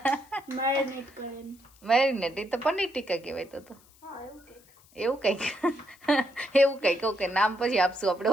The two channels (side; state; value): left; noise; hiss, 28 dB below the sound